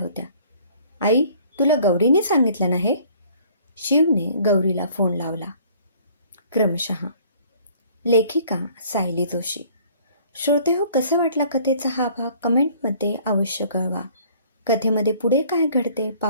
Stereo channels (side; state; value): both; inverted; correlation -0.55